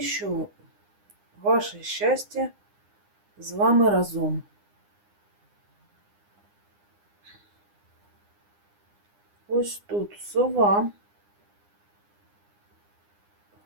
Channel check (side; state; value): left; late; 9.8 ms